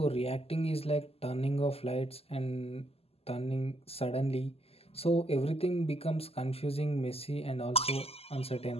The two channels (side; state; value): right; late; 0.29 ms